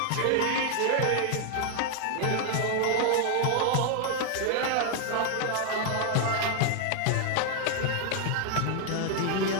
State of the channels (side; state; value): both; different; correlation 0.00